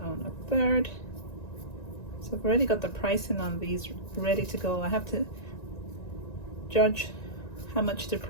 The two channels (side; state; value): right; late; 1.9 ms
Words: on a third. So I've already got the pricing on these ready to go. I have to judge how much to